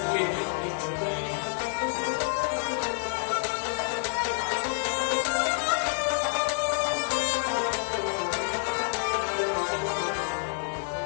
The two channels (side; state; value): right; silent; 59 dB below the other